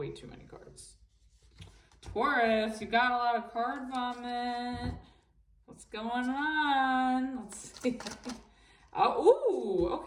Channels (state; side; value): identical; both; correlation 1.00